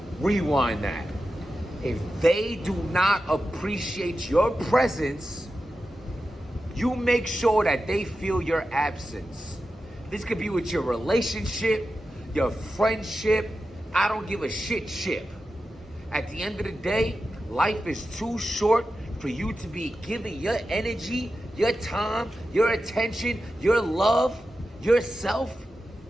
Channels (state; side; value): normal; both; correlation 0.92